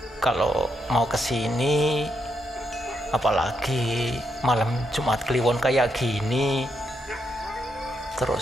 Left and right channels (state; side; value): normal; both; correlation 0.80